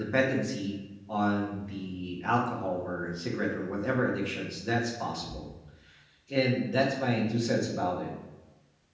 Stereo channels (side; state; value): both; identical; correlation 1.00